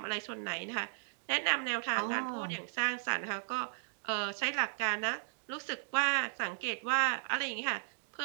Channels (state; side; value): silent; left; digital silence